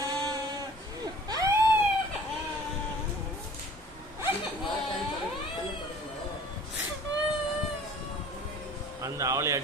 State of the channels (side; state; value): both; normal; correlation 0.48